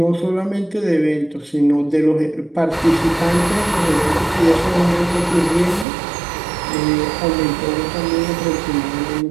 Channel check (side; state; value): left; drops out; at 5.9 s